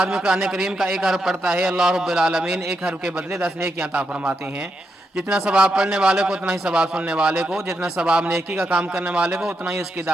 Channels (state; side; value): normal; both; correlation 0.83